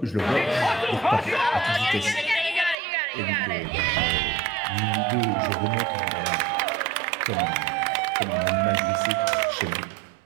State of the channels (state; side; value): drops out; left; at 2.8 s